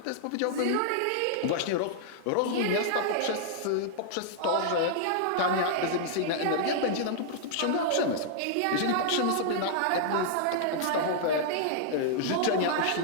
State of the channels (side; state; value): both; different; correlation -0.01